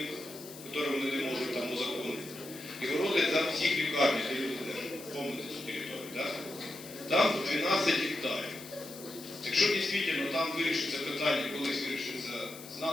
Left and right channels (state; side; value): noise; left; hiss, 15 dB below the sound